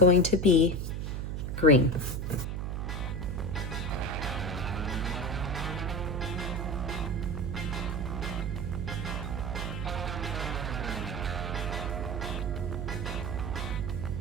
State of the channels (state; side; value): noise; right; hum, 2 dB below the sound